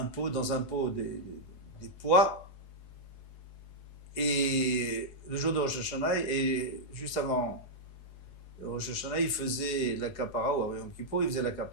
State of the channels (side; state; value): right; late; 4.7 ms